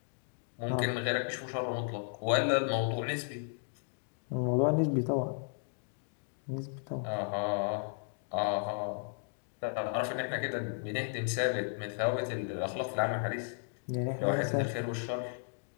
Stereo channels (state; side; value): silent; right; digital silence